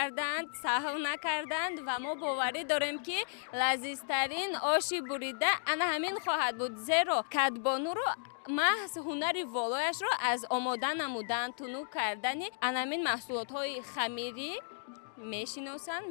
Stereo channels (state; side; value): silent; right; digital silence